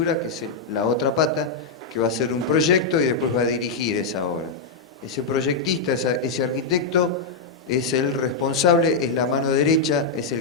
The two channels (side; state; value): right; quieter; 4.1 dB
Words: que es la otra pata, que va a hacer un proyecto y después va a dirigir esa obra. Ese proyectista, ese arquitecto, es el responsable, es la mano derecha, es